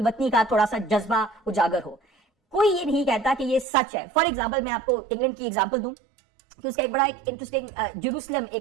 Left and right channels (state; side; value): drops out; left; at 3.7 s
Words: کا تھوڑا سا جذبہ اجاگر ہو. کوئی یہ نہیں کہتا کہ یہ سچ ہے. فار ایگزامپل میں آپ کو انگلینڈ کی ایگزامپل دوں کہ اس کا ایک بڑا ایک انٹرسٹنگ جیروسلم